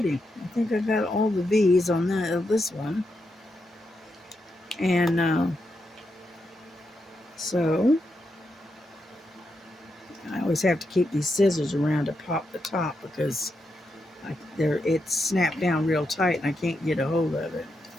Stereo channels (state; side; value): normal; both; correlation 0.84